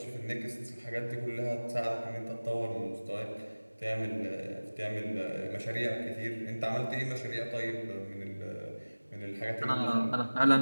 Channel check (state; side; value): inverted; both; correlation -1.00